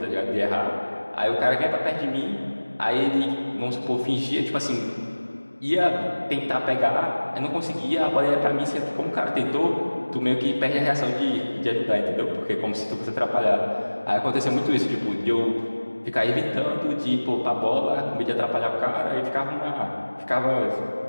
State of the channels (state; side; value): inverted; both; correlation -1.00